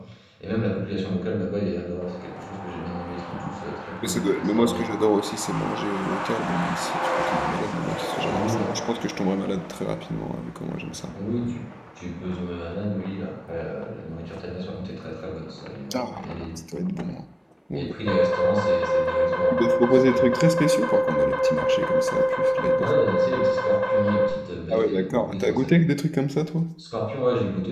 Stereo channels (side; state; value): both; identical; correlation 1.00